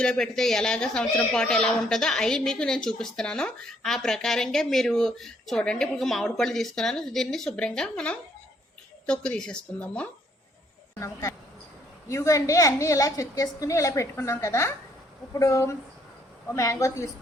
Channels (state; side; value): normal; both; correlation 0.67